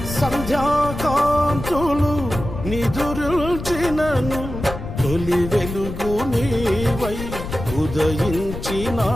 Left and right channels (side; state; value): left; noise; rumble, 8 dB below the sound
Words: సంధ్యాకాంతులు నిదురుల్చినను, తొలి వెలుగు నీవై ఉదయించి